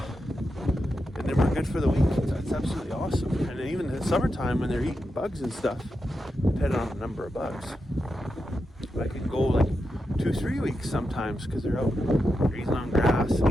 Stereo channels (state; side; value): normal; both; correlation 0.87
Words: then we're good for the week. That's absolutely awesome. And even in the summertime when they're eating bugs and stuff, depending on the number of bugs, I can go like 2-3 weeks sometimes because they're out grazing on grass and